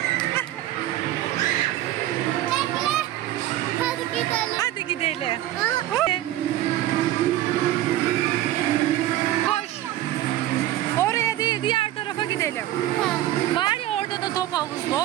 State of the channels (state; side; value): quieter; left; 14.1 dB